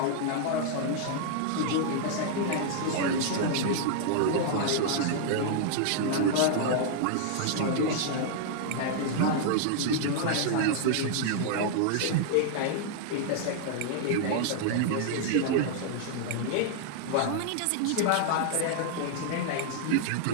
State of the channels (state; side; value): different; both; correlation -0.01